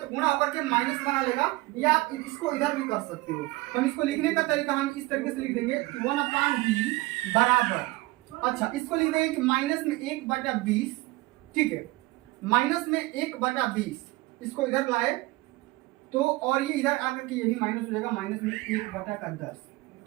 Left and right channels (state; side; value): quieter; left; 21.2 dB